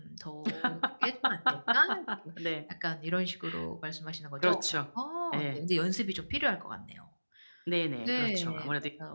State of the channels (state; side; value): inverted; both; correlation -1.00